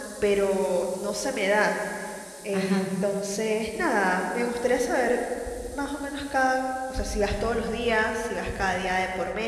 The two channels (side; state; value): both; identical; correlation 1.00